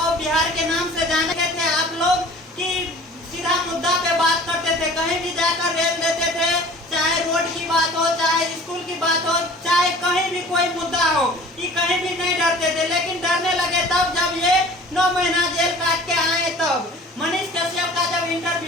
बिहार के नाम से जाने थे आप लोग, कि सीधा मुद्दा पे बात करते थे, कहीं भी जाकर रेल देते थे, चाहे रोड की बात हो, चाहे स्कूल की बात हो, चाहे कहीं भी कोई मुद्दा हो, ये कहीं भी नहीं डरते थे। लेकिन डरने लगे तब जब ये 9 महीना जेल काट के आए तब। मनीष कश्यप का जब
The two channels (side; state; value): both; normal; correlation 0.46